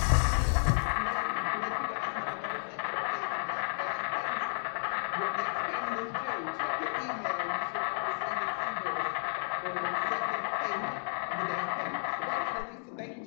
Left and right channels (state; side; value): silent; right; digital silence